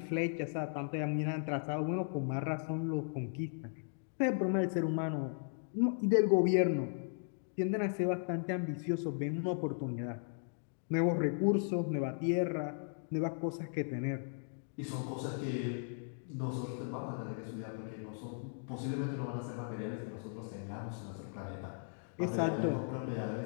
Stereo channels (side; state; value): right; silent; digital silence